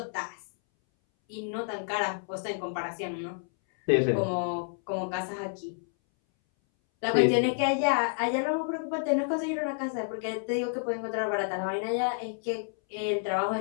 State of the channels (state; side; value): silent; right; 58 dB below the other